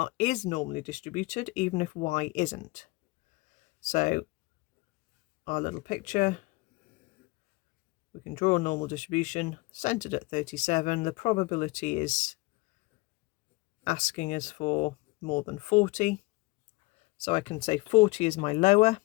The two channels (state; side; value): quieter; right; 23.7 dB